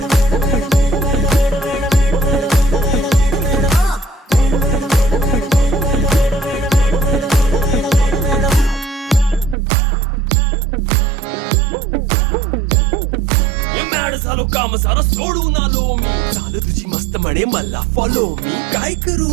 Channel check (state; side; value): drops out; left; at 9.6 s